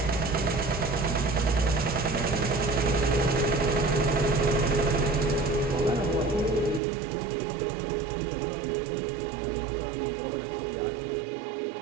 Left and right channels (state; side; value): drops out; left; at 6.8 s